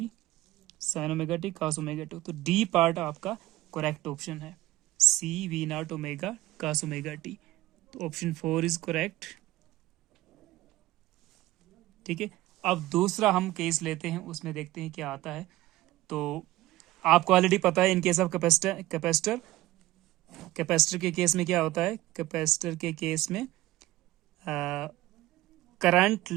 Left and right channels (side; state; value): left; quieter; 17.1 dB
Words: sine omega T cos omega T. तो D पार्ट आपका करेक्ट ऑप्शन है, C V naught omega cos omega T. तो option 4 is correct. ठीक है, अब दूसरा हम case लेते हैं, उसमें देखते हैं क्या आता है। तो आपको ऑलरेडी पता है इन केस ऑफ कैपेसिटर के केस में क्या होता है। कैपेसिटर के केस में करंट